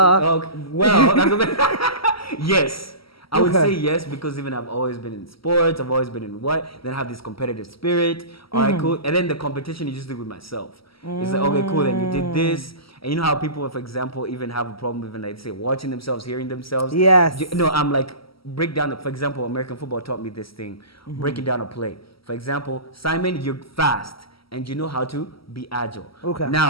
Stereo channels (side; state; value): right; late; 0.75 ms